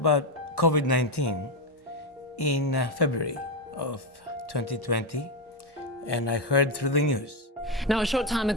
COVID-19 in February of 2020, and I heard through the news. Now, a short time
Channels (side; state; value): both; normal; correlation 0.08